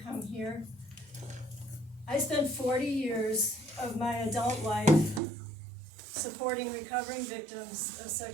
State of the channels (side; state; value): left; drops out; at 5.2 s